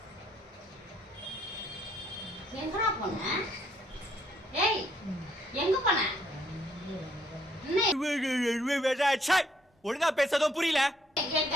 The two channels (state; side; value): normal; both; correlation 0.68